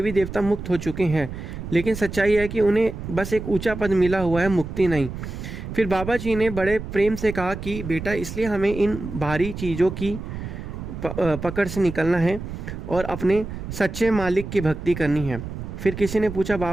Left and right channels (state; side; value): noise; right; rumble, 8 dB below the sound